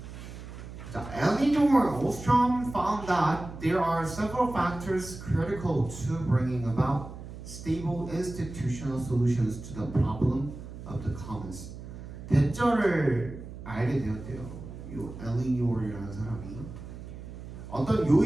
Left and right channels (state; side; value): noise; right; hum, 12 dB below the sound